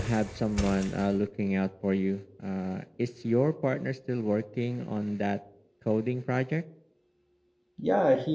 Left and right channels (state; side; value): identical; both; correlation 1.00